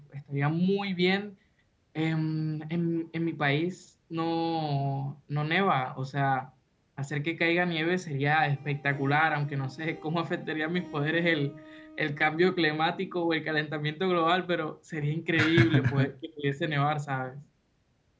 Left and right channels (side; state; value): both; identical; correlation 1.00